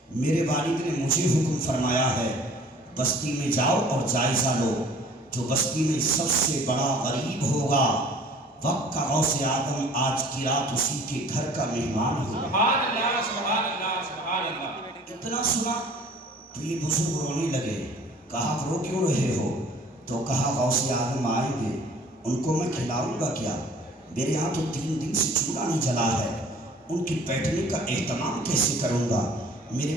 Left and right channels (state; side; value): normal; both; correlation 0.51